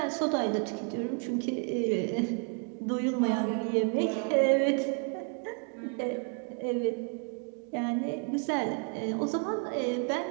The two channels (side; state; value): left; quieter; 39.5 dB